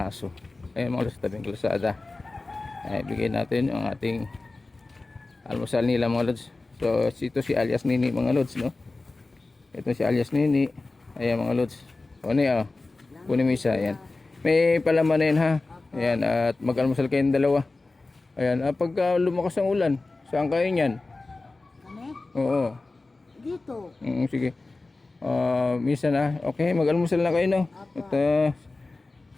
Ayan mga lods, tabing kalsada. Ay, bigay natin ang ating almusal nila mga lods. So ito si alias Nini mga lods, no? Ito si alias Nini. Ayan mga lods. O niya, kunin mo isa. Ayan. May palaman na yun ha. Ayan, at mag-almusal kayong dalawa. Ayan, pagka lumakas ang ulan, saan kayo niyan? Oo. Dito. Sige. Minsan okay, mag-almusal na kayo, no? At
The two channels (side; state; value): right; quieter; 3.4 dB